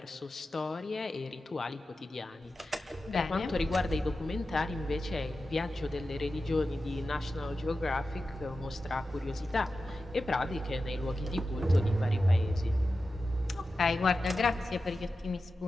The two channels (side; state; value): both; normal; correlation 0.92